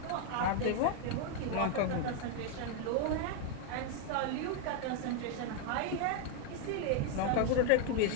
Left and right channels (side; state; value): both; different; correlation 0.01